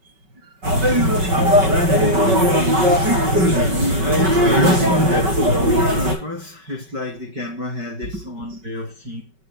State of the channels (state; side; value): late; left; 5.2 ms